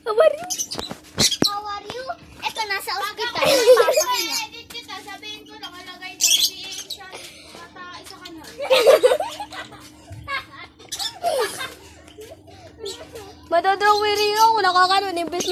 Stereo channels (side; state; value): both; identical; correlation 1.00